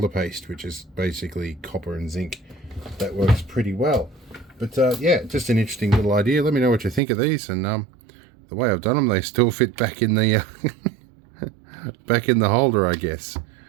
paste, which is basically copper and zinc. That works pretty well. But yeah, just an interesting little idea. Let me know what you think of these. And the way I've done them, they still fit back in the back in the holder, I guess.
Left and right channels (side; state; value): left; drops out; at 7.0 s